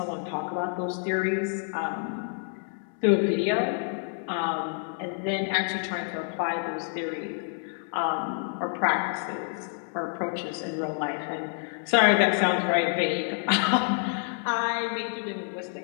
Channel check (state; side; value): silent; right; 59 dB below the other